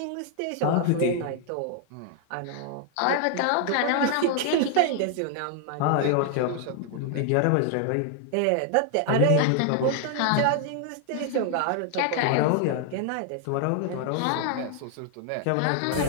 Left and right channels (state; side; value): different; both; correlation 0.00